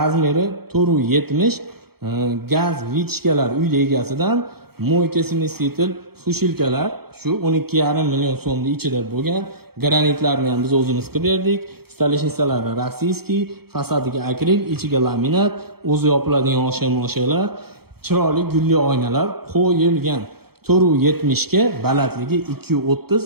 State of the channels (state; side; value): late; left; 0.96 ms